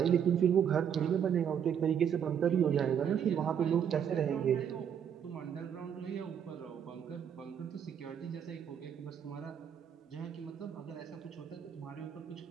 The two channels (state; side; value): quieter; left; 8.3 dB